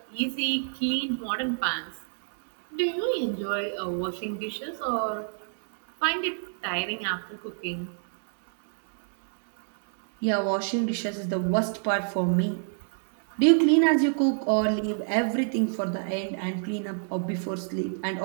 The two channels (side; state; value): left; silent; digital silence